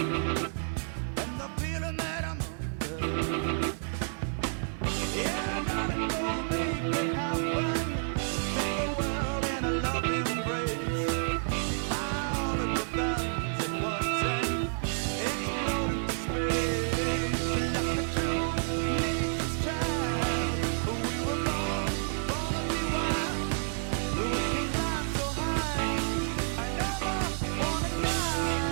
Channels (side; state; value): left; silent; digital silence